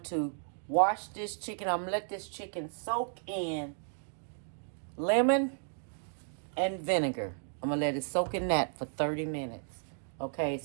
to wash this chicken. I'm gonna let this chicken soak in lemon and vinegar. I'm gonna let it soak in that for 30 minutes. Okay,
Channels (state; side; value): silent; left; digital silence